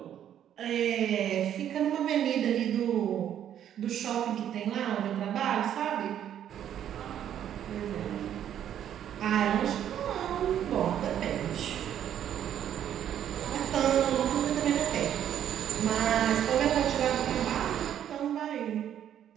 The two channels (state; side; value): quieter; left; 10.2 dB